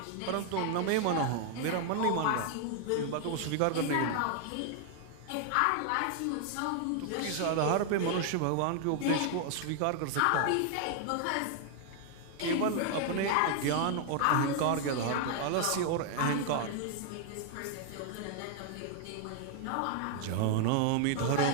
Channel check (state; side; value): different; both; correlation 0.00